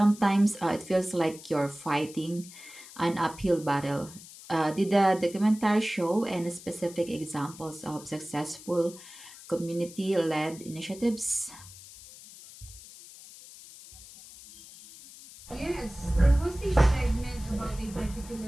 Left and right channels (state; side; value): noise; left; hiss, 18 dB below the sound